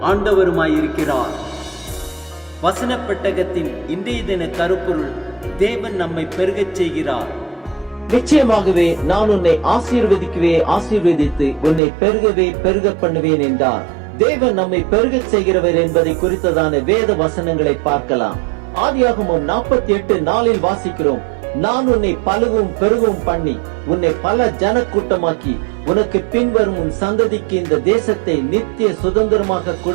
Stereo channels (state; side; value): drops out; left; at 11.8 s